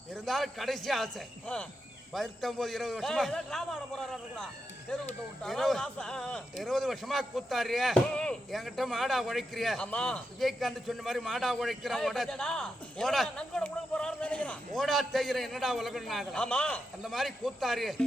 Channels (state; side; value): normal; both; correlation 0.86